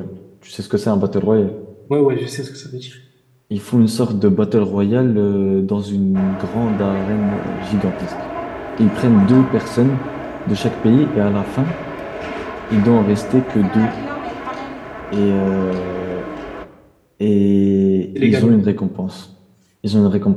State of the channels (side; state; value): both; identical; correlation 1.00